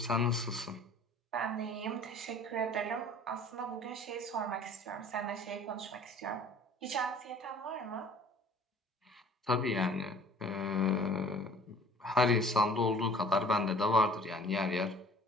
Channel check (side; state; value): both; normal; correlation 0.50